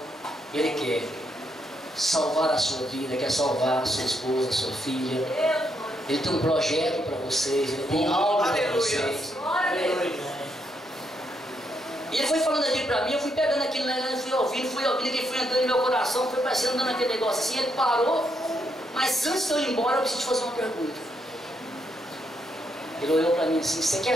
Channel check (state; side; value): normal; both; correlation 0.78